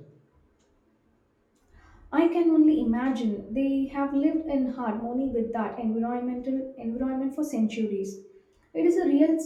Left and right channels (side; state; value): both; identical; correlation 1.00